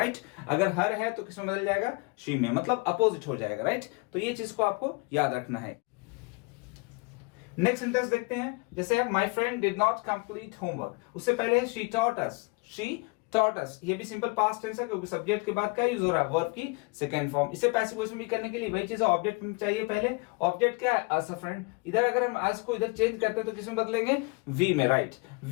अगर हर है तो किसमें बदल जाएगा? शी में, मतलब अपोजिट हो जाएगा। राइट, तो ये चीज को आपको याद रखना है। नेक्स्ट सेंटेंस देखते हैं, जैसे my friend did not complete homework, उससे पहले है she taught us. She taught अस, ये भी सिंपल पास्ट टेंस है, क्योंकि सब्जेक्ट के बाद क्या यूज हो रहा है? वर्ब की सेकंड फॉर्म। इसे पैसिव वॉइस में भी करने के लिए वही चीज है, ऑब्जेक्ट चाहिए पहले। ऑब्जेक्ट क्या है? अस अ फ्रेंड। इधर अगर हम अस को इधर चेंज करते हैं तो किसमें बदलेंगे? वी में। राइट,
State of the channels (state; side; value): quieter; right; 28.2 dB